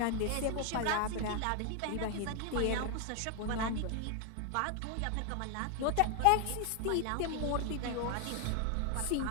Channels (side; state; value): both; different; correlation 0.00